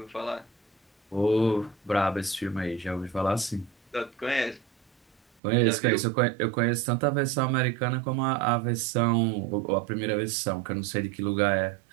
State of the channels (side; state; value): left; drops out; at 5.2 s